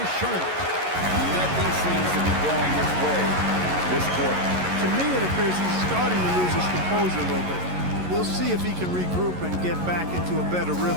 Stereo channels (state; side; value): late; left; 11 ms